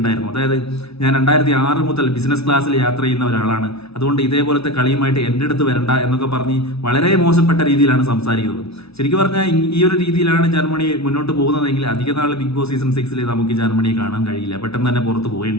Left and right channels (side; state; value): right; late; 0.79 ms